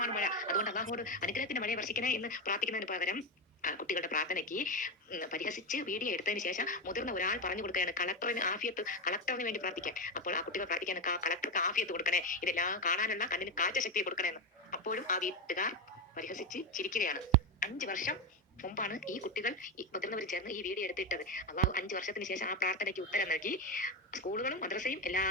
മഴ. അതുകൊണ്ട് അള്ളാഹുവോട് അനുഗ്രഹത്തിന്റെ മഴയെ വർഷിക്കണേ എന്ന് പ്രാർത്ഥിക്കുന്നതിന് പകരം കുട്ടികളുടെ പ്രാർത്ഥനയ്ക്ക് പരിഹസിച്ച് വീഡിയോ എടുത്തതിന് ശേഷം മുതിർന്ന ഒരാൾ പറഞ്ഞു കൊടുക്കുകയാണ് കളക്ടറിന് വേണ്ടി പ്രാർത്ഥിക്കാൻ. അപ്പോൾ ആ കുട്ടികൾ പ്രാർത്ഥിക്കാൻ കളക്ടർക്ക് ആഫിയത്ത് കൊടുക്കണേ, ഇതെല്ലാം കാണാനുള്ള കണ്ണിന് കാഴ്ച ശക്തിയെ കൊടുക്കണേന്ന്. അപ്പോഴും ആ വീട്ടുകാർ പരിഹസിച്ച് ചിരിക്കുകയാണ്. 5 വർഷം മുമ്പാണ് ഈ കുട്ടികൾ മുതിർന്നവർ ചേർന്ന് ഈ വീഡിയോ എടുത്തിട്ടത്. അള്ളാഹു 5 വർഷത്തിന് ശേഷം ആ പ്രാർത്ഥനയ്ക്ക് ഉത്തരം നൽകി. സ്കൂളുകളും മദ്രസയും എല്ലാം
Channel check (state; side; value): normal; both; correlation 0.12